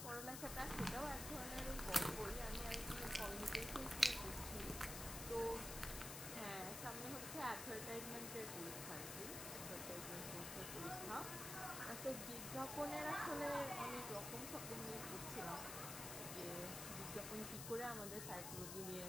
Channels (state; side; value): noise; left; hiss, 5 dB below the sound